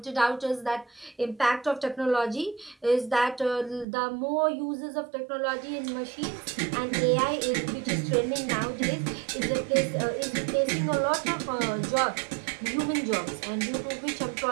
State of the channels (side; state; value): left; drops out; at 3.9 s